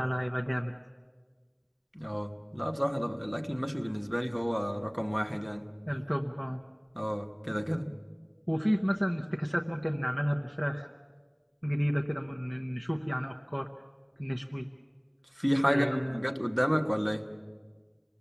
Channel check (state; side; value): identical; both; correlation 1.00